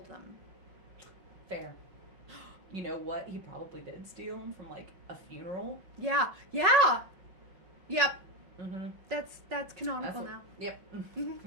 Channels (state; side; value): late; left; 5.4 ms